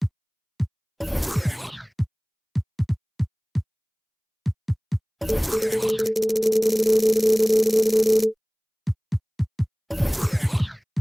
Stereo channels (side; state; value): both; identical; correlation 1.00